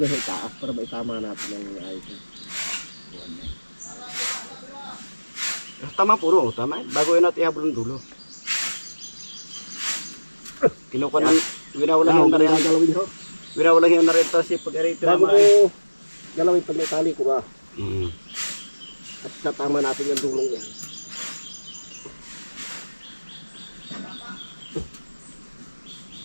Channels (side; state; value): both; inverted; correlation -1.00